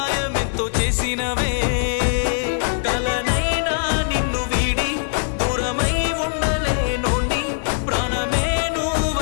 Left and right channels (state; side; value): silent; right; digital silence